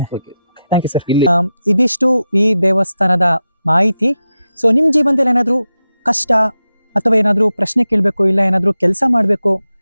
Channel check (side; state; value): both; inverted; correlation -0.91